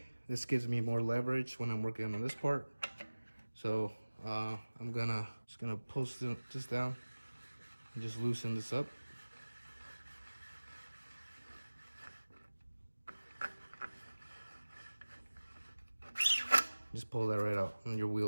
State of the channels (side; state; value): both; inverted; correlation -1.00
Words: This gives me more leverage when I'm working on this part. So I'm just gonna pull this down and just loosen this up. Just pull that right out and your